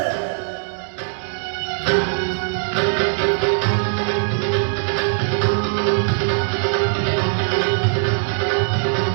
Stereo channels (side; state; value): left; silent; digital silence